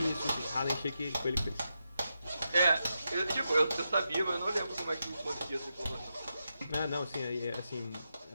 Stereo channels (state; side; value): inverted; both; correlation -0.87